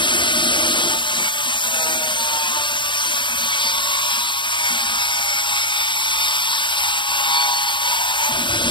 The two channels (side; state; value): right; late; 0.23 ms